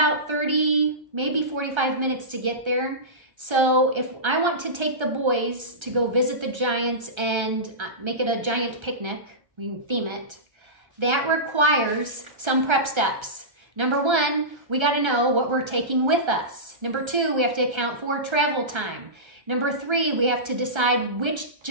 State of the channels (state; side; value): late; left; 1.3 ms